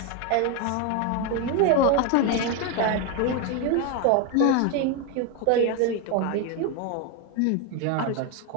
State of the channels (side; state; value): both; different; correlation 0.02